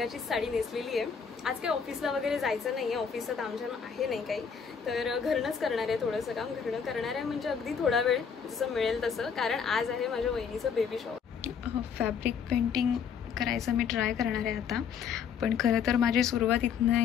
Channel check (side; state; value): right; quieter; 6.8 dB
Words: साडी नेसलेली आहे. आज काही ऑफिसला वगैरे जायचं नाही आहे, ऑफिसचं तामझाम आहे नाही काही, तर घरनंच करणार आहे. थोडंसं काम घरनं करणार आहे, म्हणजे अगदी थोडा वेळ जसं मिळेल तसं, कारण आज आहे माझ्या वहिनीचं बेबी शॉवर. फॅब्रिक पेंटिंग करायचं मी ट्राय करणार आहे आता. पण खरं तर माझी सुरुवात इथनं